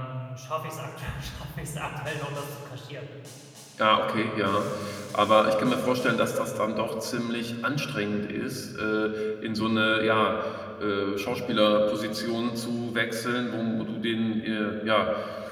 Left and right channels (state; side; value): identical; both; correlation 1.00